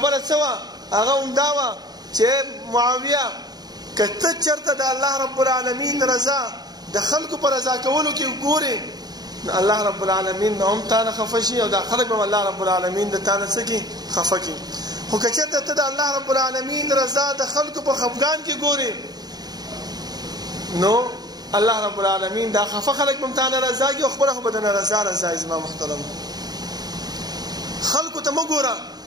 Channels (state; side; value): late; left; 0.19 ms